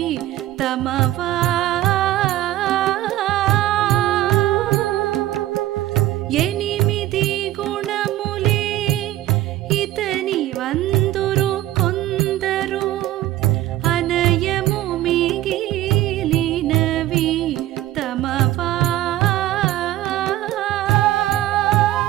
తమవా ఎనిమిది గుణములే ఇతని వందురు కొందరు అనయము మిగిలినవి తమవా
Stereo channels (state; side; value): quieter; left; 14.4 dB